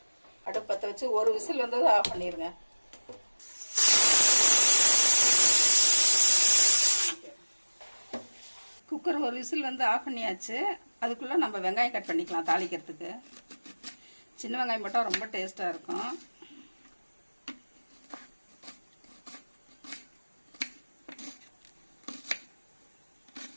அடுப்பு பற்ற வச்சு ஒரு விசில் வந்தது ஆஃப் பண்ணிடுங்க. குக்கர் ஒரு விசில் ஆஃப் பண்ணியாச்சு. அதுக்குள்ளே நம்ம வெங்காயம் கட் பண்ணிக்கலாம். தாளிக்கிறதுக்கு சின்ன வெங்காயம் போட்டால் ரொம்ப டேஸ்ட்டாக இருக்கும்.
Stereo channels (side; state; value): both; inverted; correlation -1.00